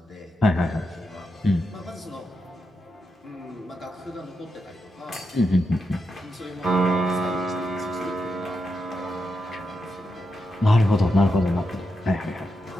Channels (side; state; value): both; normal; correlation 0.86